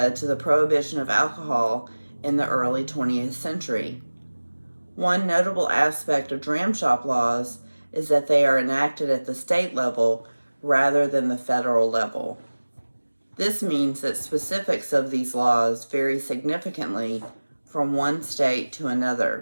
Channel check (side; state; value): both; inverted; correlation -1.00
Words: to the prohibition of alcohol in the early 20th century. One notable aspect of dram shop laws is that they are enacted at the state level rather than the federal level. This means that specifics of these laws vary significantly from one state to